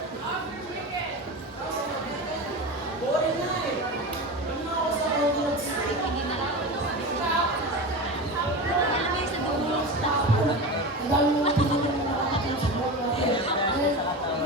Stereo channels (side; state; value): both; normal; correlation 0.26